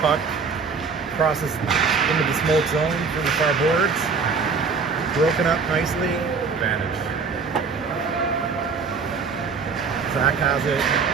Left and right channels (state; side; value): quieter; left; 5.1 dB